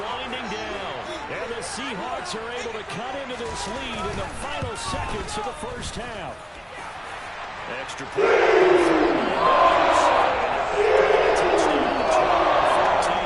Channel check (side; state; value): both; identical; correlation 1.00